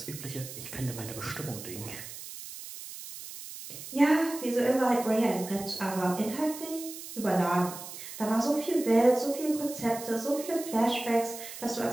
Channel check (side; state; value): right; noise; hiss, 12 dB below the sound